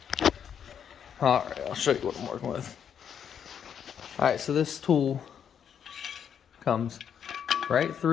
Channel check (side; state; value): right; quieter; 8.2 dB